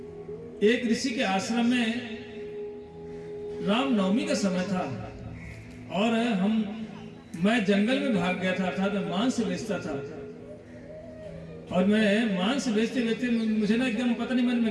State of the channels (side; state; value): both; identical; correlation 1.00